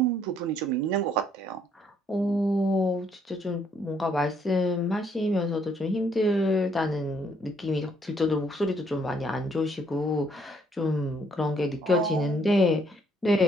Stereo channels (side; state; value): both; normal; correlation 0.68